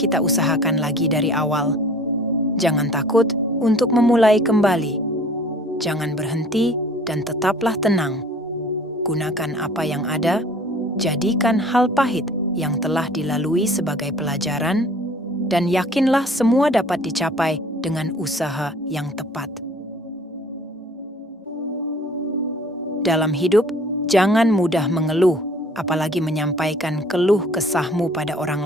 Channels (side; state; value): both; normal; correlation 0.50